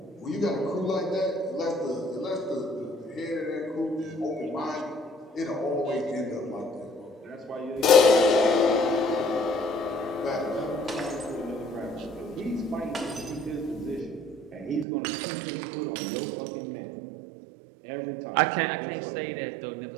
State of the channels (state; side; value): drops out; left; at 14.9 s